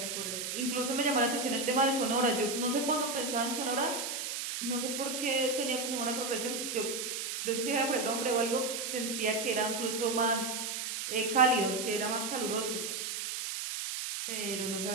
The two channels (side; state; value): right; noise; hiss, 4 dB below the sound